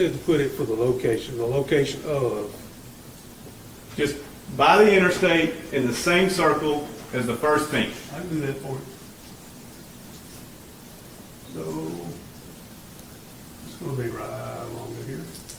to put it for the location of, Just by the interstate in the same circle as the first ping. I can do that for you. So, it's going to be right along here.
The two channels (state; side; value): identical; both; correlation 1.00